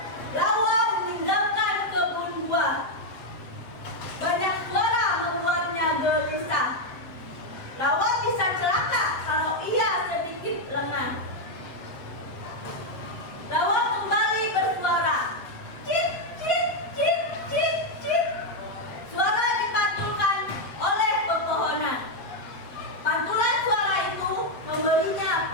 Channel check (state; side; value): late; right; 7.8 ms